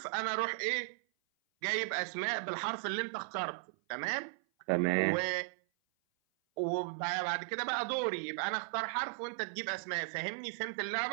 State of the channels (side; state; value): left; silent; 54 dB below the other